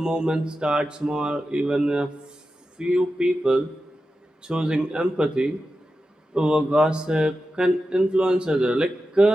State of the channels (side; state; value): both; normal; correlation 0.91